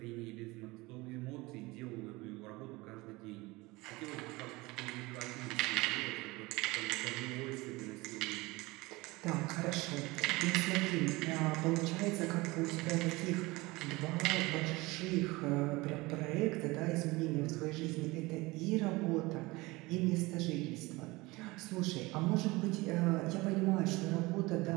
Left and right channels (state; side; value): quieter; left; 22.2 dB